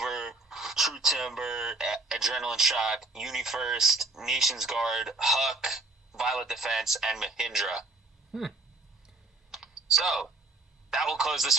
True Timber, Adrenaline Shock, UniFirst, Nations Guard, Huck, Violet Defense, and Mahindra. So, that will close this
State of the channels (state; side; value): quieter; left; 3.1 dB